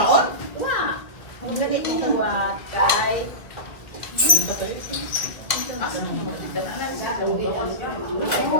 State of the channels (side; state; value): right; late; 2.0 ms